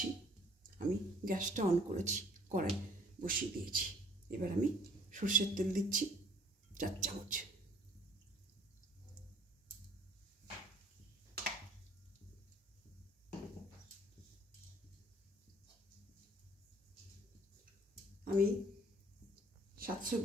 আমি গ্যাসটা অন করেছি, কড়াই বসিয়ে দিয়েছি। এবার আমি সর্ষের তেল দিচ্ছি 4 চামচ। আমি 700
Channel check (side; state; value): both; normal; correlation 0.57